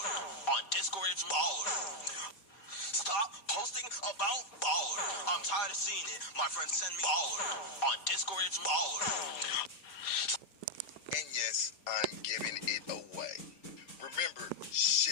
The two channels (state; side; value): late; right; 4.5 ms